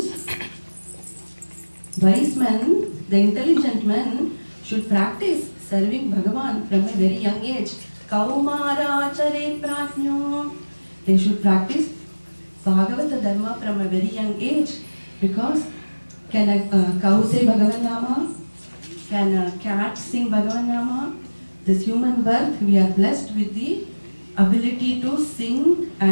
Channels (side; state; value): both; inverted; correlation -1.00